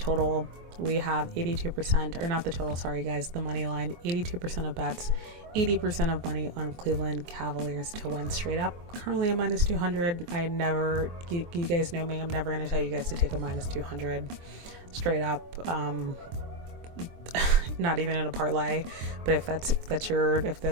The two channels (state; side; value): late; left; 23 ms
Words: we have 82%, or not the total, sorry guys, the money line, 82% of bets, 80% of money on Cleveland Cavaliers to win straight up. Currently a -200. You guys know me, I'm never going to tell you guys to take a -200 straight up. Not even in a parlay, but if that's your